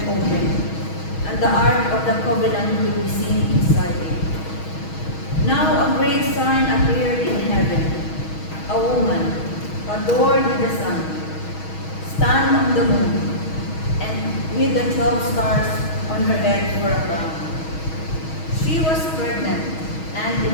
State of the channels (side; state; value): right; late; 6.3 ms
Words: opened, and the ark of the covenant could be seen inside it. Now a great sign appeared in heaven, a woman, adorned with the sun, stand on the moon, and with the 12 stars on her head for a crown. She was pregnant and